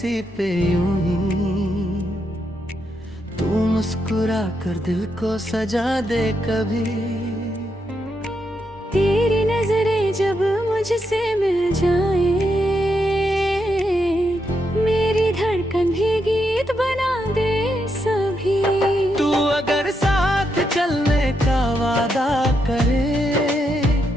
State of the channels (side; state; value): both; normal; correlation 0.81